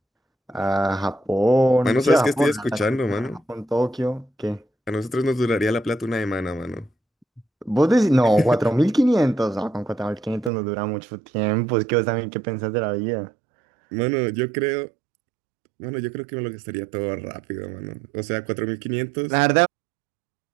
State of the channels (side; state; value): left; drops out; at 10.5 s